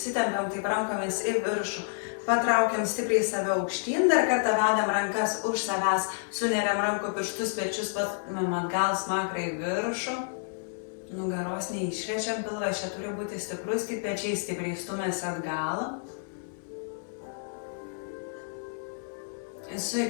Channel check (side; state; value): right; silent; digital silence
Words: taip rankomis į viršų. Patraukiam stipriai save aukštyn, dar kartą vedam rankas už savęs, suneriam rankų pirštus, pečius patumėm atgal, smakrą į viršų. Nugaros neišrečiam, pilvas čia turi būti stiprus, tik pečiai stipriai stumėsi atgal. Su